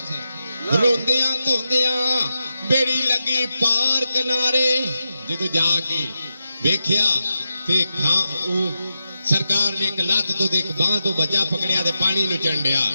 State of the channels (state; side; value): inverted; both; correlation -0.88